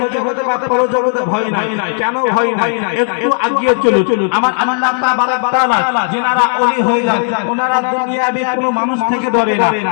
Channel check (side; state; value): right; silent; 57 dB below the other